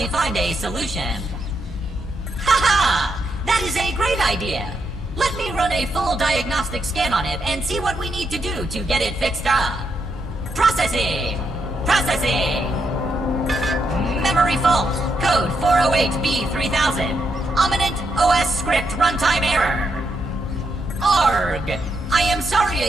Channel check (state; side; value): normal; both; correlation 0.80